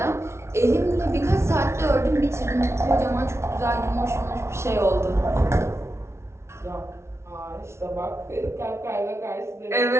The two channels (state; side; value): late; left; 0.13 ms